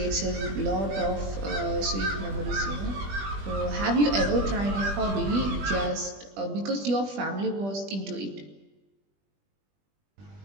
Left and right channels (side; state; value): left; late; 20 ms